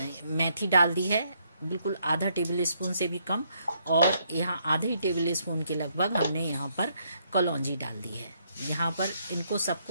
मेथी डाल दी है, बिल्कुल आधा टेबल स्पून से भी कम। और यहाँ आधे टेबल स्पून के लगभग हमने यहाँ पर कलौंजी डाल दी है। यहाँ पर इनको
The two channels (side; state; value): both; inverted; correlation -0.73